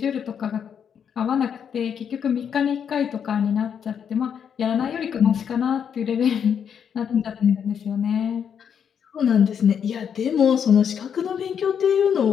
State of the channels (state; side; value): quieter; right; 7.8 dB